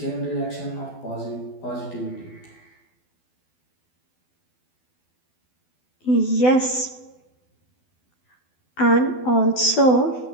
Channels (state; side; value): late; right; 12 ms